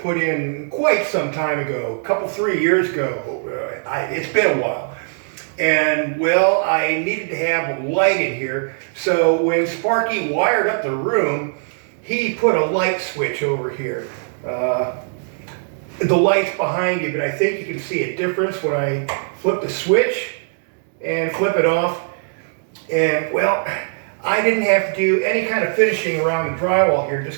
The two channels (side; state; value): left; silent; digital silence